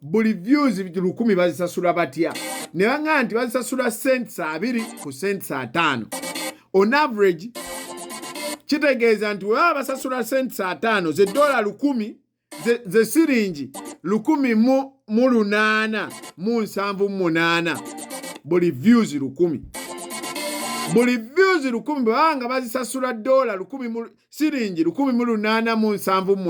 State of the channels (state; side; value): identical; both; correlation 1.00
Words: buli views 1000 bazisasula batya ne banga nti bazisasula cents 2 ku cents 5 on average kitegeeza nti wewe basasula cents 5 ze $10 ze siringi 1,878 buli views 1000 buli views 1000 banga bazisasula $10 siringi